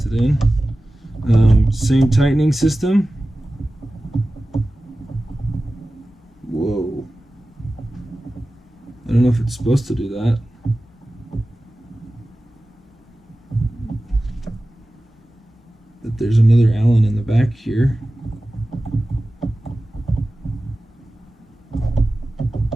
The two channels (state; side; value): normal; both; correlation 0.96